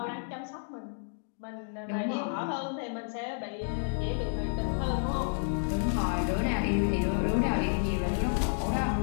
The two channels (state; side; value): silent; right; digital silence